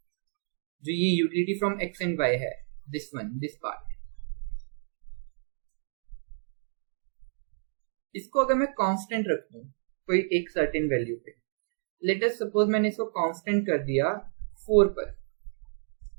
जो ये utility from x and y है, दिस पार्ट, इसको अगर मैं कांस्टेंट रख दूं कोई एक सर्टेन वैल्यू पे, लेट अस सपोज मैंने इसको कांस्टेंट कर दिया 4 पर,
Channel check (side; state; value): left; silent; digital silence